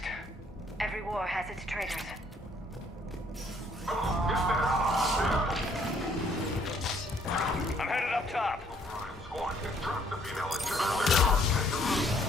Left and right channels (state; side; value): normal; both; correlation 0.64